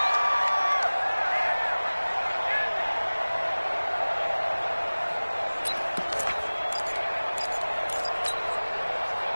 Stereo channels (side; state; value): both; inverted; correlation -1.00